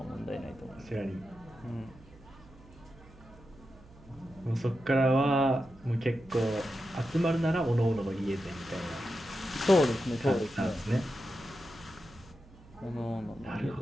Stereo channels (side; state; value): right; noise; hum, 23 dB below the sound